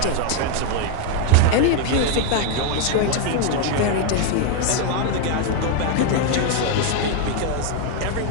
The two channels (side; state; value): both; different; correlation 0.01